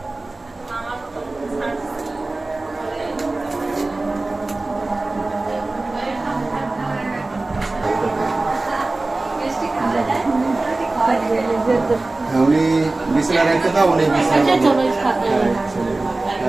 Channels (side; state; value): left; quieter; 3.1 dB